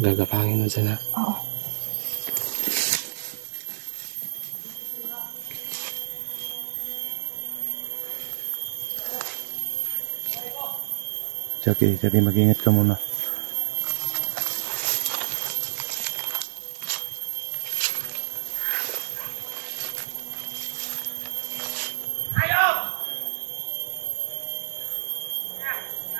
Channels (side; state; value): left; silent; 60 dB below the other